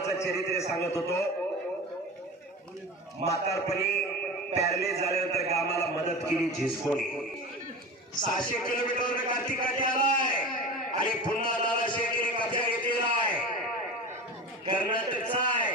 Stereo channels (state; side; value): normal; both; correlation 0.30